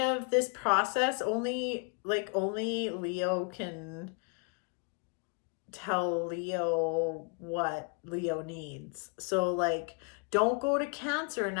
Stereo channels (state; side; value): quieter; right; 36.0 dB